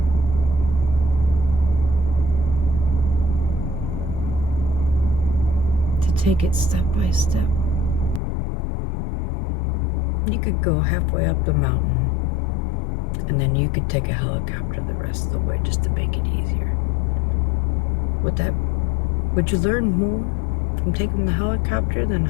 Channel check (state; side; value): drops out; right; at 8.2 s